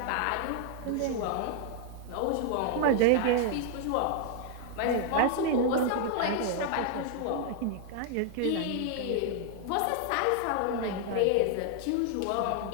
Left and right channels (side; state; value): both; different; correlation 0.00